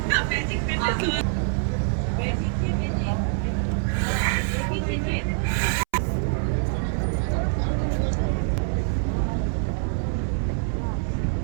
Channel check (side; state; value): left; silent; 62 dB below the other